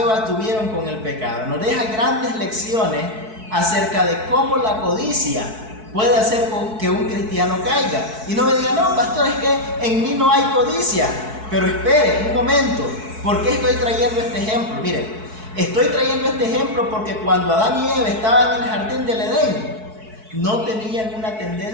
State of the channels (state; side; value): late; left; 4.6 ms